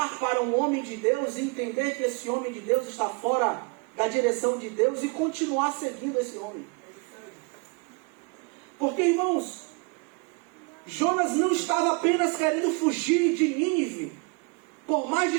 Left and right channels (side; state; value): left; quieter; 30.7 dB